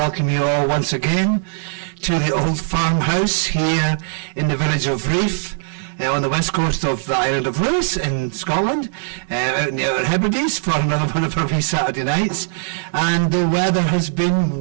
you all once again to the old farmhouse here in the village of Riof, on the west coast of the island of Lewis in Scotland, out in the Outer Hebrides for another one of our wee Saturday nights. And the weather has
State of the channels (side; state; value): left; silent; 66 dB below the other